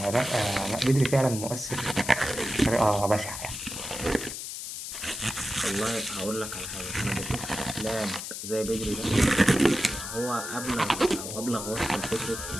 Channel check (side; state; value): left; noise; hiss, 7 dB below the sound